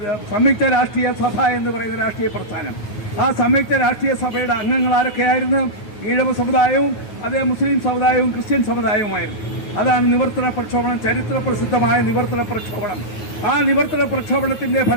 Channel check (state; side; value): late; right; 9.3 ms